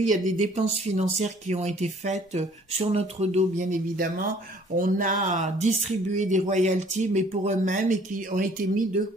Il y a des dépenses financières qui ont été faites sur notre dos, bien évidemment. On a distribué des royalties, mais pour eux-mêmes, et qui ont été mis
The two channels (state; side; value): normal; both; correlation 0.56